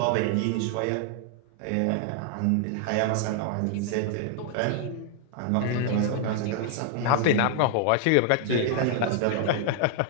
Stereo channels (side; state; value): both; different; correlation 0.00